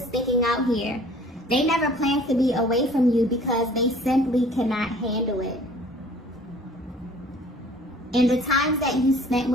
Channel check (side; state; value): both; normal; correlation 0.51